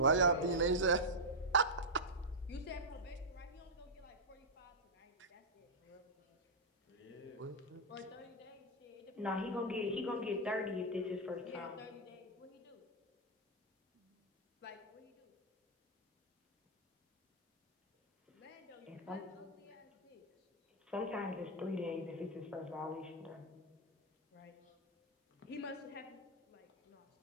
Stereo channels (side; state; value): both; normal; correlation -0.06